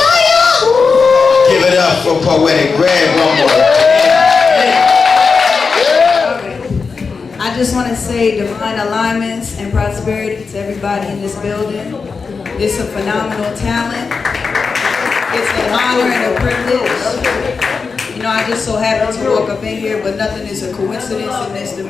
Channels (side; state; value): right; quieter; 4.9 dB